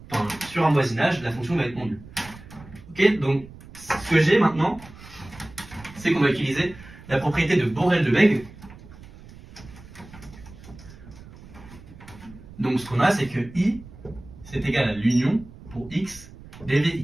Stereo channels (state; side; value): noise; right; rumble, 19 dB below the sound